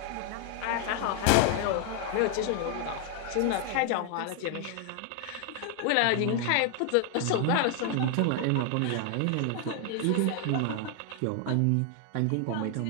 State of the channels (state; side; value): different; both; correlation 0.00